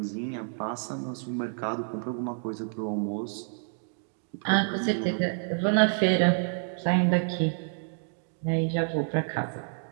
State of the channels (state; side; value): silent; left; 59 dB below the other